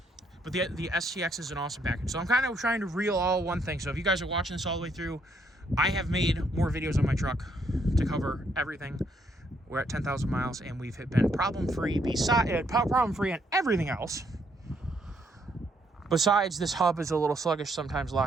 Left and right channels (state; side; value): normal; both; correlation 0.72